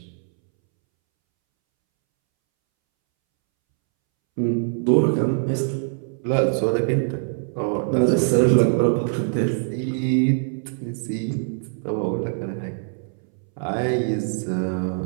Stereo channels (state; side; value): silent; left; 63 dB below the other